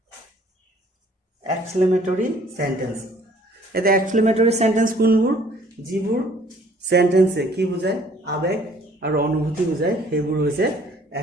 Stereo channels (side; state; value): both; normal; correlation 0.58